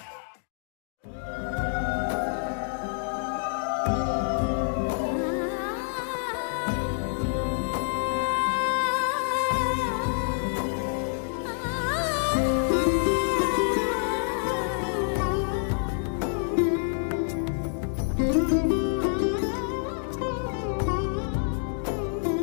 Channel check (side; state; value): right; silent; digital silence